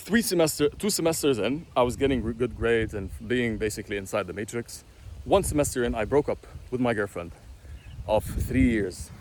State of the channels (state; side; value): identical; both; correlation 1.00